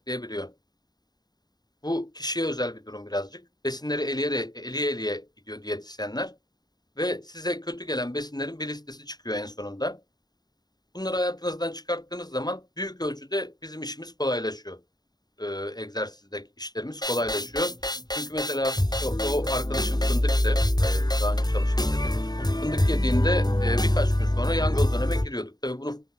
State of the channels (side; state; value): right; late; 0.20 ms